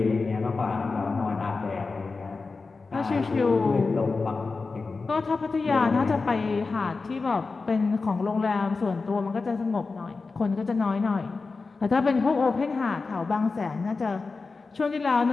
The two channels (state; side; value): quieter; right; 4.1 dB